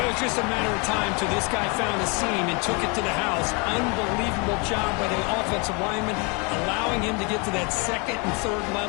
was just a matter of time till this guy found a seam and took it to the house. Unbelievable job by the offensive lineman, allowing him to get to that 2nd and 3rd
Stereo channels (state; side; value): quieter; right; 31.4 dB